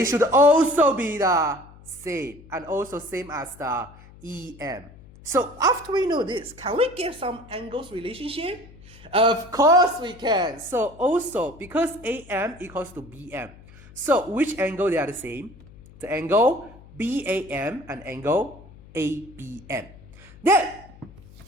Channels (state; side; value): noise; left; hum, 22 dB below the sound